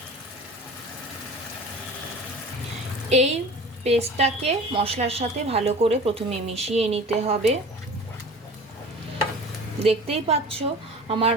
এই পেস্টটাকে মশলার সাথে ভালো করে প্রথমে মিশিয়ে নিতে হবে। দেখতেই পাচ্ছ আমার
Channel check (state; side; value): normal; both; correlation 0.40